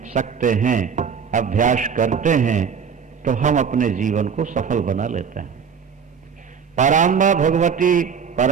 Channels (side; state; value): left; quieter; 6.6 dB